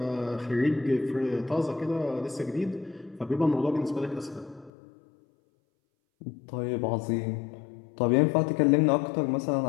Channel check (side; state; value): right; drops out; at 4.7 s